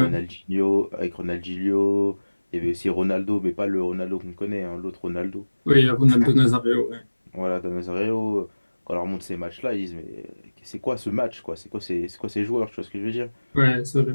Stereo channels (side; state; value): both; inverted; correlation -1.00